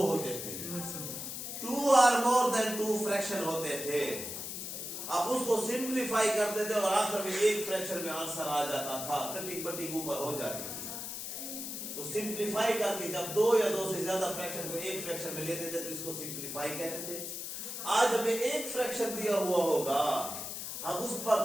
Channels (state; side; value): noise; left; hiss, 6 dB below the sound